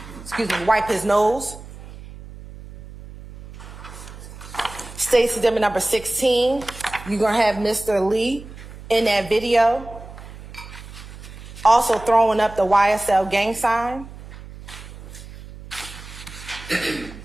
his nose. State's Exhibit number 16, you're gonna have Mr. Lee in that video, also throwing up the YSL gang sign.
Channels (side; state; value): right; noise; hum, 15 dB below the sound